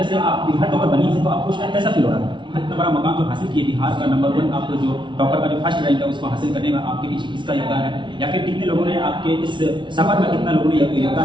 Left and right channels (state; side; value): late; left; 0.24 ms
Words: से आप बिहार टॉपर बनी है तो आपको शायद कैसा फील हो रहा है? इतना बड़ा मकाम जो हासिल किए, बिहार का नंबर 1 आप जो टॉपर का जो फर्स्ट रैंक है उसको हासिल करने में आपके पीछे किसका योगदान है, या फिर कितने लोगों ने आपके इस सफर में कितना लोगों ने